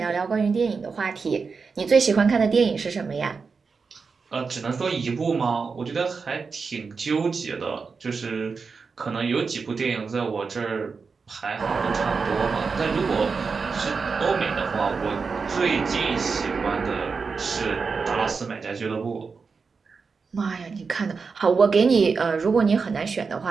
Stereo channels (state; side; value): quieter; left; 5.0 dB